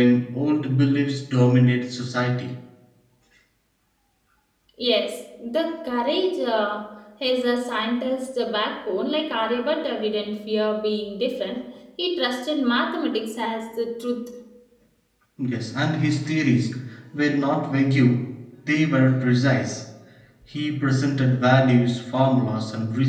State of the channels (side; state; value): both; identical; correlation 1.00